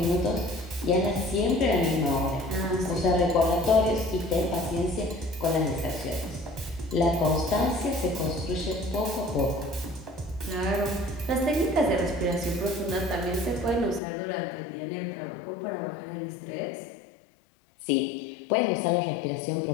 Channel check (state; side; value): drops out; right; at 14.0 s